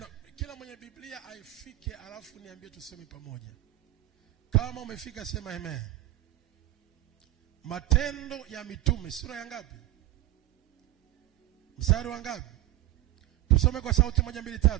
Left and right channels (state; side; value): quieter; left; 15.9 dB